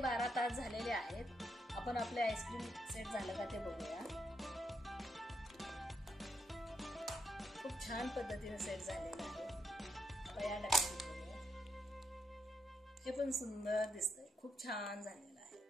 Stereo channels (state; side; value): normal; both; correlation 0.79